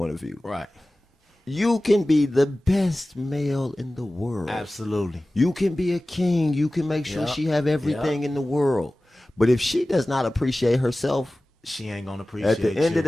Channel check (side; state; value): both; normal; correlation 0.97